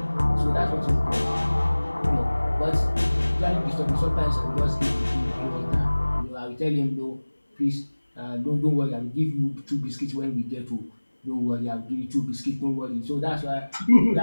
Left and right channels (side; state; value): both; inverted; correlation -1.00